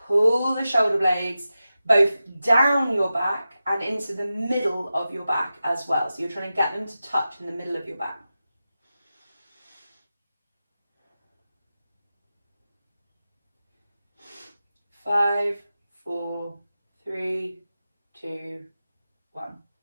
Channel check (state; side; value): inverted; both; correlation -0.93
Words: Pull the shoulder blades both down your back and into the middle of your back as well. So you're trying to get them to touch in the middle of your back. 5, 4, 3, 2, 1.